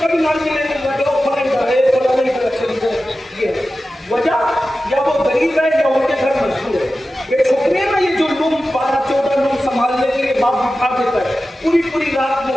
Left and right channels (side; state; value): both; normal; correlation 0.94